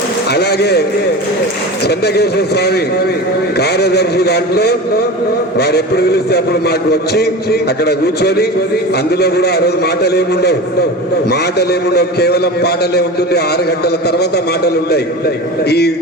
అలాగే చంద్రకేశ్వర స్వామి కార్యదర్శి దాంట్లో వారు ఎప్పుడు పిలిస్తే అప్పుడు మాకు వచ్చి అక్కడ కూర్చొని, అందులో కూడా ఆ రోజు మాటలేముండవు, కేవలం పాటలే ఉంటుంది. 6 గంటల తర్వాత మాటలు ఉంటాయి.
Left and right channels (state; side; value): normal; both; correlation 0.30